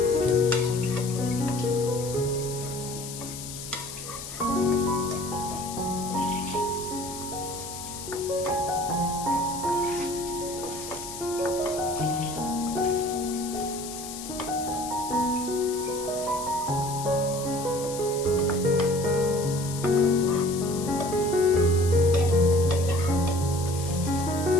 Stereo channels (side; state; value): left; noise; hiss, 10 dB below the sound